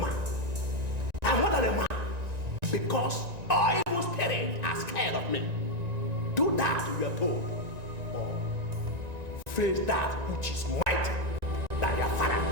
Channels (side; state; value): left; late; 1.9 ms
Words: I'm more than a man. Because all evil spirits are scared of me. Do that, you are told. Or face that which is mighty than your father.